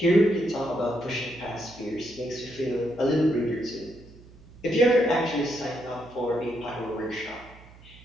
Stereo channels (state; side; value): noise; right; hum, 22 dB below the sound